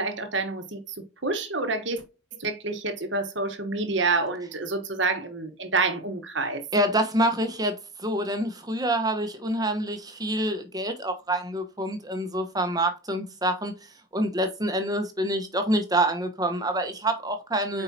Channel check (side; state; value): both; normal; correlation 0.25